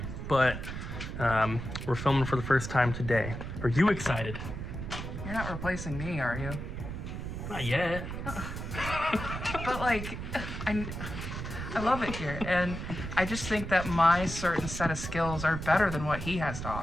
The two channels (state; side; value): noise; right; rumble, 6 dB below the sound